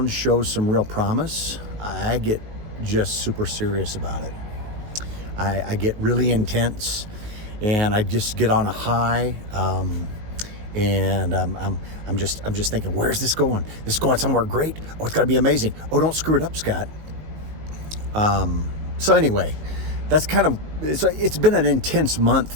shows some real promise, I get just super serious about it. I get really intense, and I just get on a high, and I'm just thinking, where's this going? This is going somewhere great. Oh, it's got to be amazing. Oh, don't screw it up, Scott. So anyway, that's kind of it's been an intense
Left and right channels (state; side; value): late; left; 19 ms